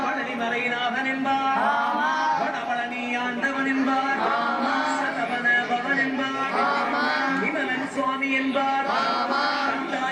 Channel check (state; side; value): identical; both; correlation 1.00